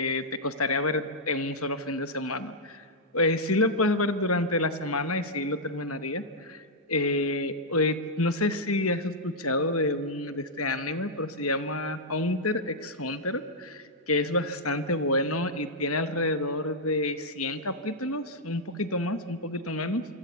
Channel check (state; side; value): normal; both; correlation -0.06